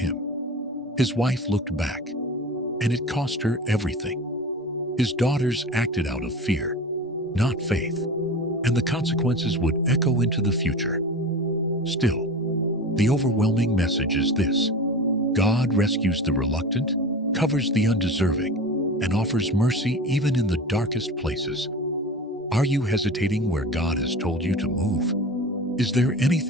His wife looked back, and it cost her everything. His daughters acted out of fear, not faith, and the consequences would echo into the future. Still, the overwhelming message is this: God rescues the reluctant, covers the undeserving, and offers mercy even in the darkest places. Are you hesitating where God has told you to move? Is there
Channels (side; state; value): both; normal; correlation 0.32